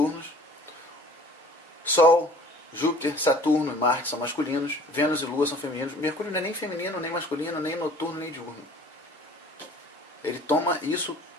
Sol, Júpiter, Saturno e Marte são masculinos. Vênus e Lua são femininos. Mercúrio não é nem feminino, nem masculino, nem noturno, nem diurno. Ele toma isso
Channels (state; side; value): normal; both; correlation 0.49